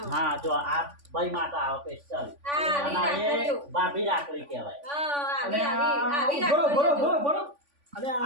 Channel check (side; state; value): left; late; 3.5 ms